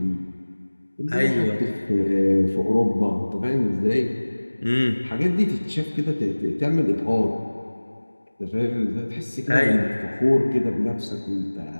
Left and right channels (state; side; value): inverted; both; correlation -1.00